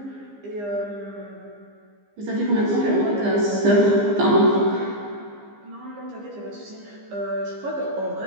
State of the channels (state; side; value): late; left; 15 ms